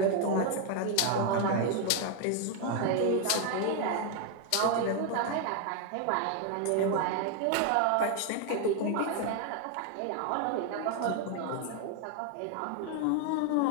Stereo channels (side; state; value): both; different; correlation 0.01